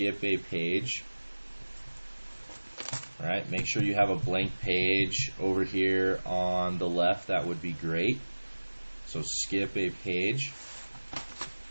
a page. All right, make sure you have a blank page over here on the left. That would be great. So skip a page.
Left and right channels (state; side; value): inverted; both; correlation -1.00